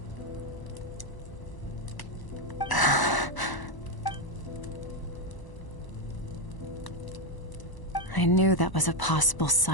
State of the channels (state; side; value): late; right; 1.0 ms